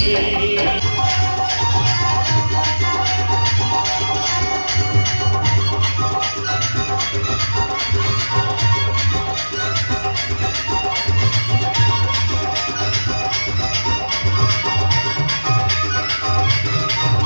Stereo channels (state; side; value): inverted; both; correlation -1.00